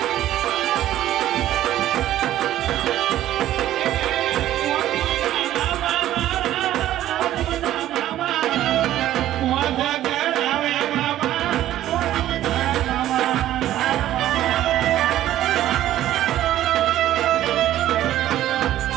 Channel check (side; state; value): left; quieter; 13.1 dB